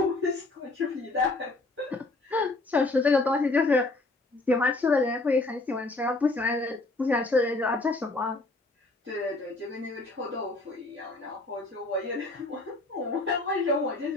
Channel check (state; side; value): quieter; right; 3.1 dB